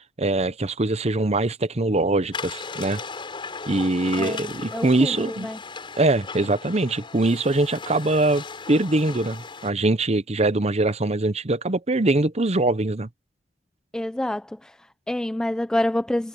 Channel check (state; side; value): normal; both; correlation 0.56